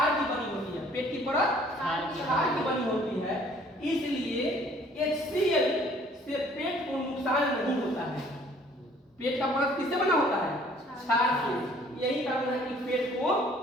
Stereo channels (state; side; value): normal; both; correlation 0.57